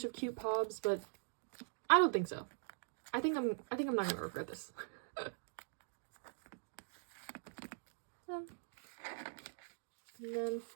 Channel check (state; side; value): silent; left; digital silence